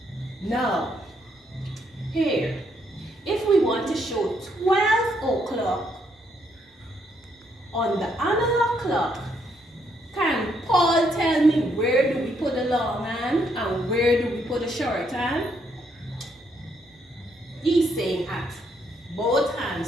Now, here, if we want to show 12 o'clock on the analog clock, can Paul tell me where do we put the long hand and where do we put the short hand? He's saying at both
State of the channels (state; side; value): normal; both; correlation 0.74